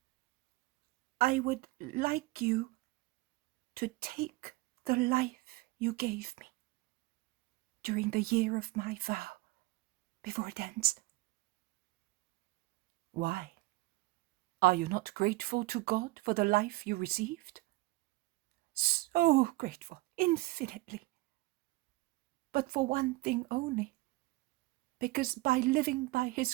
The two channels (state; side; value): quieter; left; 21.1 dB